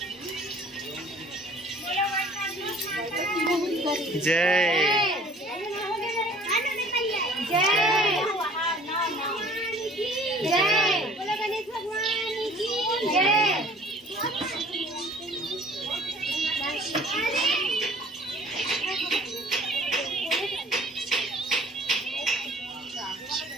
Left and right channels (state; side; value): normal; both; correlation 0.51